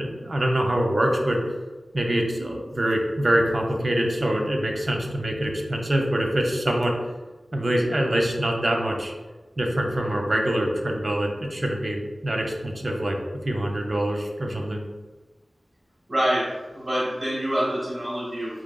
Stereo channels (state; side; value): normal; both; correlation 0.96